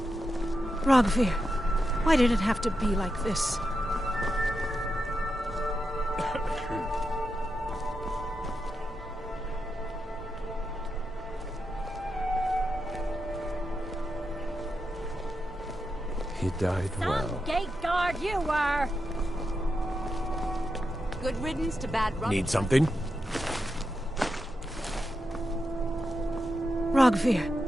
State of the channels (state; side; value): normal; both; correlation 0.87